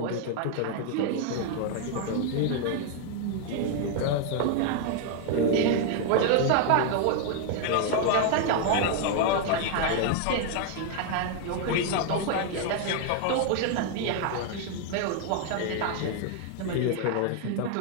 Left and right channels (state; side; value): different; both; correlation 0.00